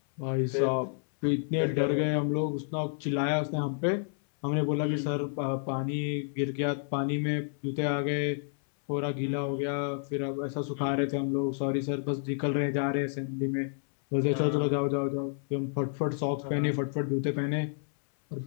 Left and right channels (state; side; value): silent; right; 58 dB below the other